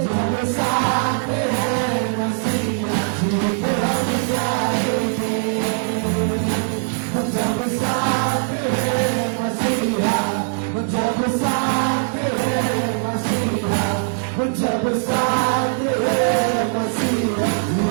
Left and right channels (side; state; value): left; silent; digital silence